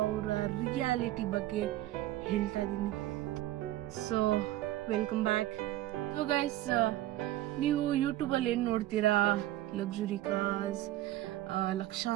ರಿಯಾಲಿಟಿ ಬಗ್ಗೆ ಹೇಳ್ತಾ ಇದ್ದೀನಿ. So welcome back. So guys, ನೀವು ಯೂಟ್ಯೂಬಲ್ಲಿ ಏನು ನೋಡ್ತೀರಾ? ಲಕ್ಸುರಿ ಕಾರ್ಸ್,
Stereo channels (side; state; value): left; quieter; 14.8 dB